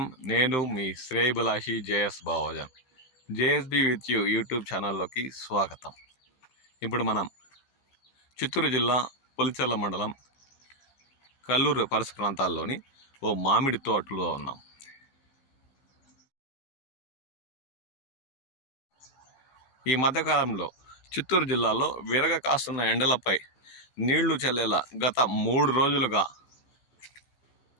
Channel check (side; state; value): right; late; 15 ms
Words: నేను మీ శ్రేయభిలాషి JS Bavajan. JSB with you YouTube ఛానల్లోకి స్వాగతం. ఇప్పుడు మనం చిత్తూరు జిల్లా పులిచెర్ల మండలం కల్లూరు పరిసర ప్రాంతాల్లోని ఓ మామిడి తోటలో ఉన్నాం. ఈ మధ్యకాలంలో చిత్తూరు జిల్లాలో విరగ కాస్తున్న ఎండలపై నీళ్లు చల్లేలా గత 3 రోజులుగా